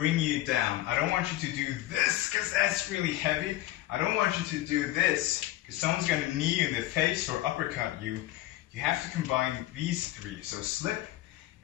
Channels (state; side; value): quieter; right; 15.7 dB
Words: you down. I don't want you to do this because that's really heavy. I don't want you to do this because someone's going to knee you in the face or uppercut you. You have to combine these 3. So slip,